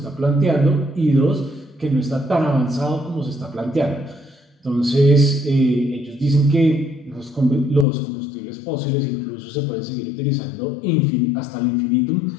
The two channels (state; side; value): drops out; right; at 7.9 s